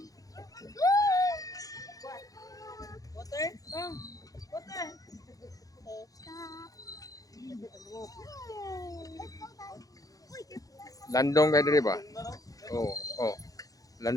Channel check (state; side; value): late; right; 0.17 ms